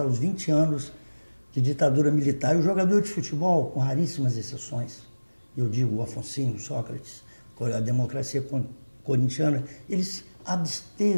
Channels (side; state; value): both; inverted; correlation -1.00